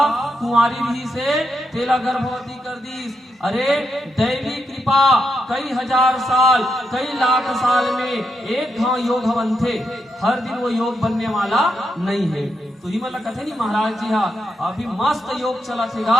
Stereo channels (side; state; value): both; normal; correlation 0.83